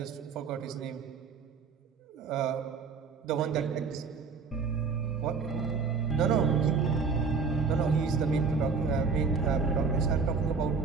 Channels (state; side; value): quieter; left; 5.1 dB